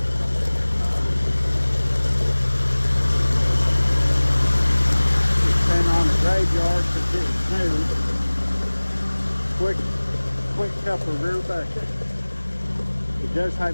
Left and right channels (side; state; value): both; inverted; correlation -1.00